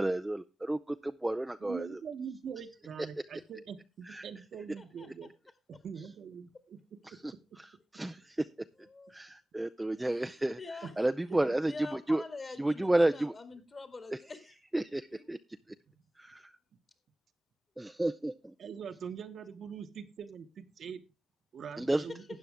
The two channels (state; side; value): normal; both; correlation 0.98